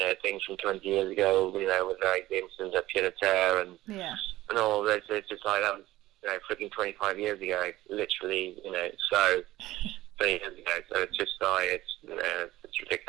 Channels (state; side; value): quieter; left; 16.5 dB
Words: things from 20 years ago, with like the instance of pied à terre and all this. It's just like that was freaking 25 years ago, literally, so 20 years ago. So it's just like it's